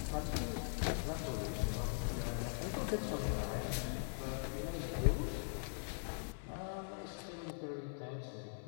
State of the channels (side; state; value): right; silent; digital silence